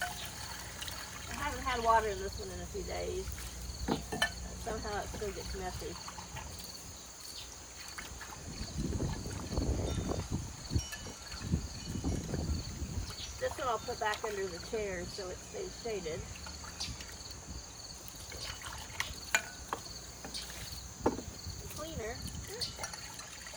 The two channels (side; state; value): both; identical; correlation 1.00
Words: I haven't had water in this one in a few days. Somehow it still gets messy. This one I'll put back under the chair so it stays shaded. The cleaner.